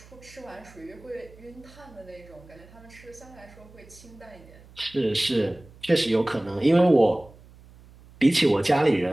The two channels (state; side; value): noise; right; hum, 23 dB below the sound